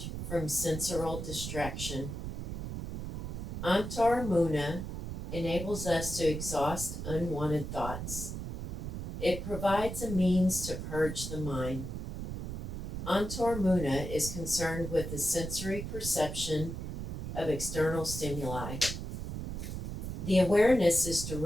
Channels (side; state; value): right; noise; rumble, 5 dB below the sound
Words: from sensorial distraction. Antaramuna enables us to exhaust unwanted thoughts. It provides a means to purge the mind. Antaramuna is concerned with the sensory perception of external stimuli. The awareness is